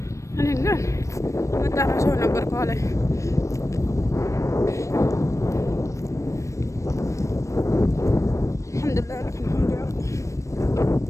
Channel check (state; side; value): late; right; 0.15 ms